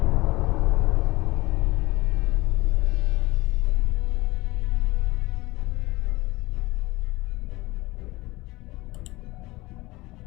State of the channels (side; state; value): right; quieter; 20.8 dB